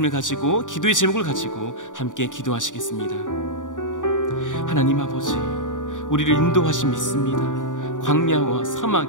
가지고 기도의 제목을 가지고 함께 기도하시겠습니다. 하나님 아버지, 우리를 인도하심 믿습니다. 광야와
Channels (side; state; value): right; late; 0.87 ms